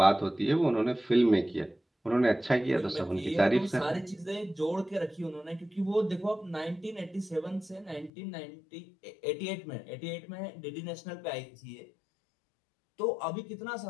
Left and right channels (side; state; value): right; drops out; at 8.1 s